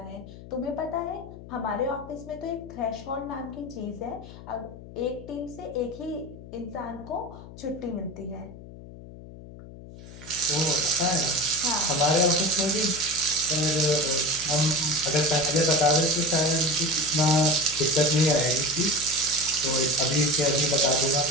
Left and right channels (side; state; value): left; noise; hum, 16 dB below the sound